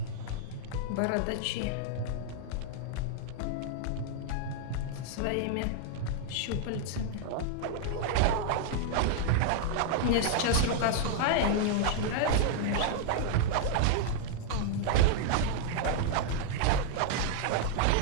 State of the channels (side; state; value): both; different; correlation -0.01